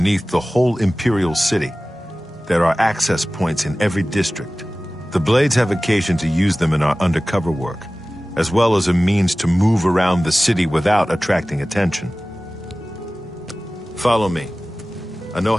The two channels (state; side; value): normal; both; correlation 0.97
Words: the whole Imperial City. There are access points in every district. The Blades have occasion to use them in our undercover work, as well as a means to move around the city without attracting attention. Follow me. I know